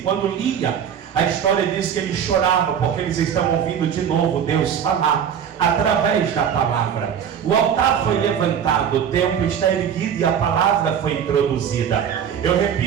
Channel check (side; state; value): left; quieter; 8.3 dB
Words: lia, a história diz que ele chorava, porque eles estão ouvindo de novo Deus falar através da palavra. O altar foi levantado, o templo está erguido e a palavra foi introduzida. Eu